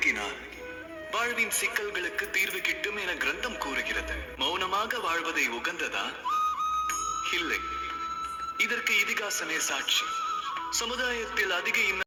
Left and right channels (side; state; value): both; identical; correlation 1.00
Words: வாழ்வின் சிக்கல்களுக்கு தீர்வு கிட்டும் என கிரந்தம் கூறுகிறது. மௌனமாக வாழ்வதை உகந்ததா? இல்லை, இதற்கு இதிகாசமே சாட்சி. சமுதாயத்தில் அதிக